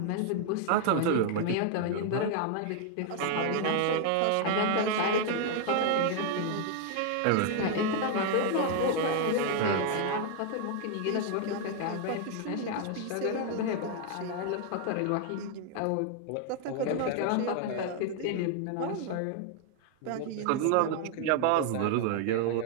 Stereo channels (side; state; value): both; different; correlation 0.00